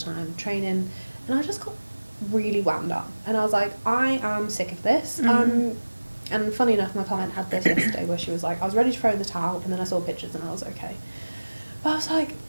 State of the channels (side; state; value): both; inverted; correlation -1.00